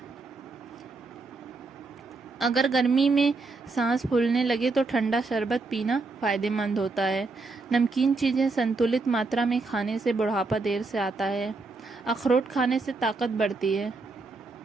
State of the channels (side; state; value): left; quieter; 3.7 dB